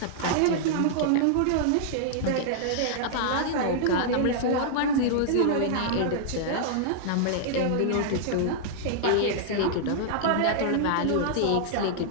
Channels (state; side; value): different; both; correlation -0.01